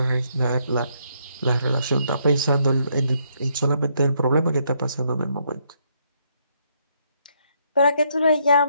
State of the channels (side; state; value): both; inverted; correlation -0.73